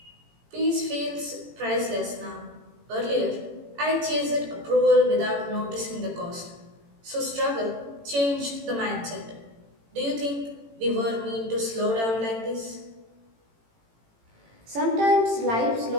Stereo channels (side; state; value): left; late; 18 ms